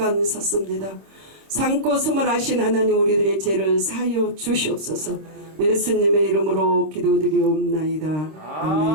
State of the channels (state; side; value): late; left; 26 ms